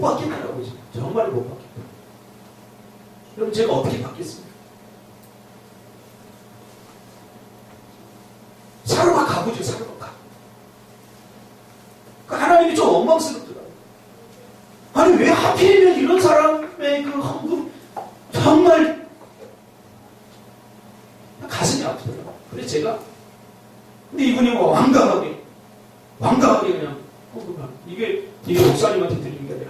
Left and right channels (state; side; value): identical; both; correlation 1.00